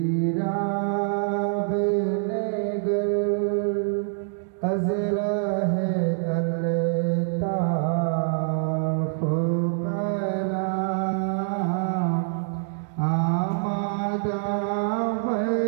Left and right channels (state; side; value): silent; left; digital silence